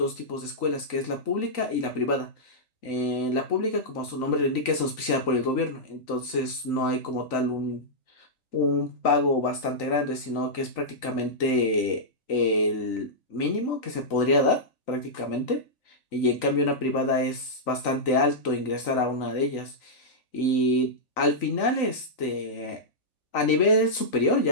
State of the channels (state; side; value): late; right; 3.9 ms